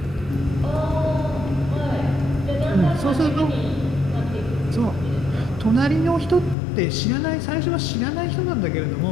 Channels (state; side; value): drops out; right; at 6.6 s